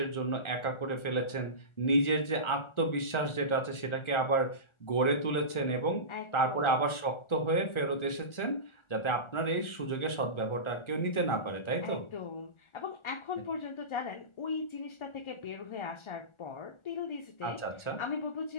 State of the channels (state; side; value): late; right; 1.4 ms